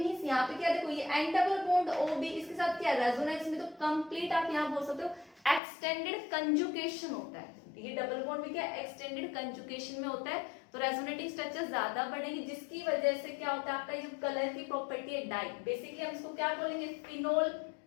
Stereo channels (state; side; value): drops out; right; at 5.6 s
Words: यहाँ पे क्या, देखो ये N डबल बॉन्ड OB, इसके साथ क्या रेजोनेंस में, तो कंप्लीट आप यहाँ बोल सकते हो एक्सटेंडेड कंजुगेशन होता है। ये डबल बॉन्ड भी क्या एक्सटेंडेड कंजुगेशन में होता है, तो रेजोनेटिंग स्ट्रक्चर ज्यादा बढ़ेगी, जिसकी वजह से क्या होता है, आपका ये जो कलर की प्रॉपर्टी है डाई, बेसिकली हम इसको क्या बोलेंगे, फिनोल।